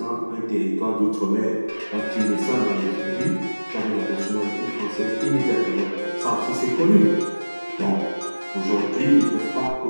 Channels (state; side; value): inverted; both; correlation -1.00